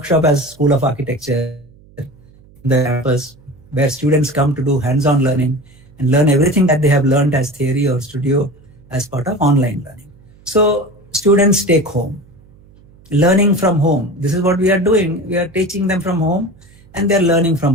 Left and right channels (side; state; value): right; noise; hum, 27 dB below the sound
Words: as School of Architecture in the campus, where students come to do hands-on learning and learn everything that they have learned as theory or studio as part of online learning. So students take home, learning from home. This is what we are doing. We are teaching them from home and they're learning